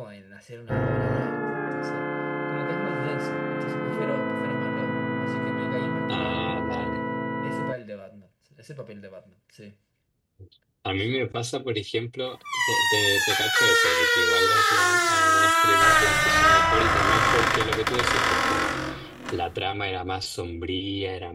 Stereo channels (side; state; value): both; identical; correlation 1.00